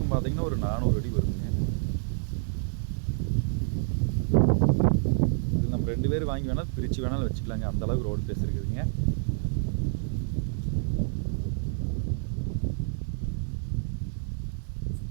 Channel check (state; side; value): silent; left; digital silence